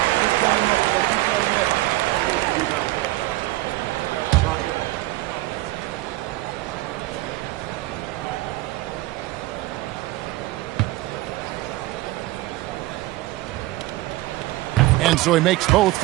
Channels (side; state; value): left; quieter; 18.3 dB